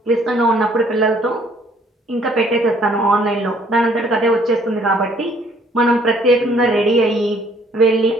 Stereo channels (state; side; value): normal; both; correlation 0.62